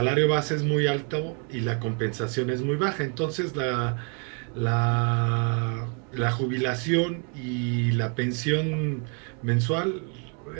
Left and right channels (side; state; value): left; quieter; 39.7 dB